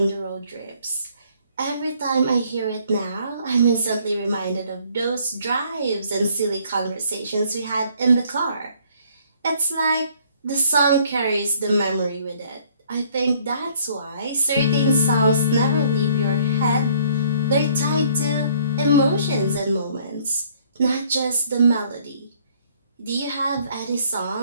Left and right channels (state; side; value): inverted; both; correlation -0.61